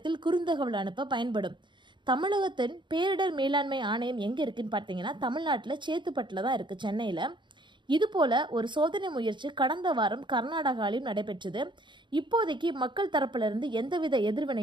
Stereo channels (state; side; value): late; left; 0.23 ms